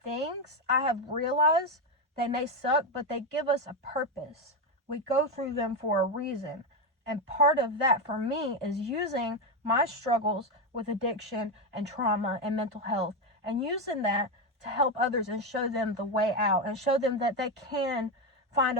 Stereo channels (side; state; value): both; normal; correlation 0.09